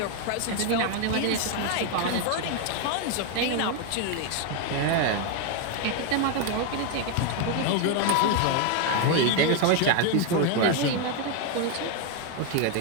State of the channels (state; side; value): different; both; correlation 0.01